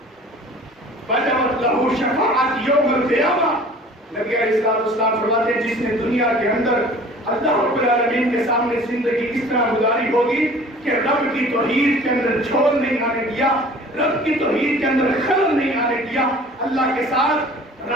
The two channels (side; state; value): both; normal; correlation 0.47